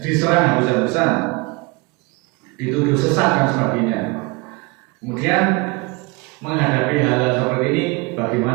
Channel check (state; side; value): quieter; left; 26.9 dB